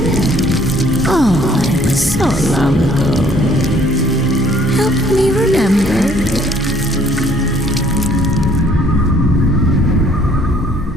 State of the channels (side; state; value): both; normal; correlation 0.60